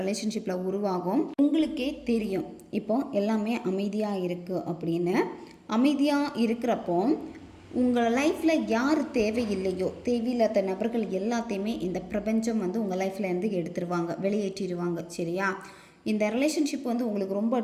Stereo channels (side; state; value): both; identical; correlation 1.00